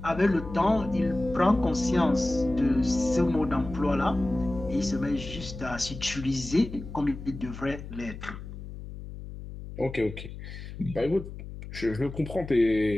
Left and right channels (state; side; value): noise; left; hum, 11 dB below the sound